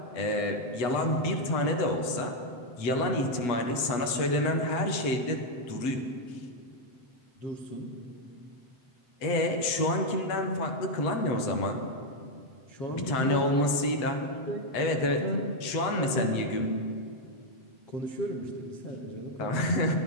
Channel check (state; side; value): late; right; 7.8 ms